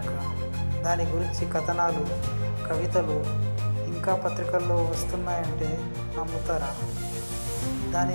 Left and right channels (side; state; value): both; inverted; correlation -1.00